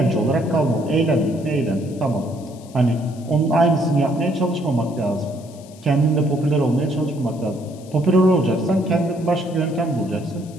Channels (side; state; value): left; noise; hiss, 24 dB below the sound